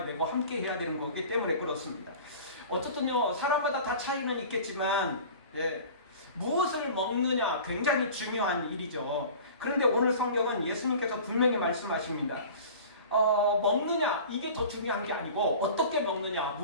되고 함께 해야 되는 거기 때문에 그렇습니다. 어쨌든요, 사람마다 다 차이는 있겠지만 무엇을 먹느냐 굉장히 중요한 일이죠. 그런데 오늘 성경은 예수님께서 분명히 말씀하십니다. 먹느냐 이게 더 중요한 게 아니고 어떻게 먹느냐,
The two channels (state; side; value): inverted; both; correlation -0.40